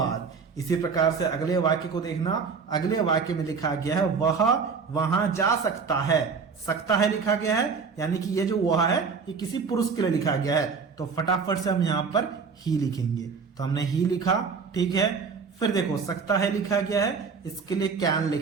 इसी प्रकार से अगले वाक्य को देखना। अगले वाक्य में लिखा गया है वह वहां जा सकता है। सकता है लिखा गया है, यानी कि ये जो वह है ये किसी पुरुष के लिए लिखा गया है। तो फटाफट से हम यहां पर ही लिखेंगे। तो हमने ही लिखा, ठीक है। फिर देखो सकता है लिखा गया है, इसके लिए कैन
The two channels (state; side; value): quieter; left; 5.4 dB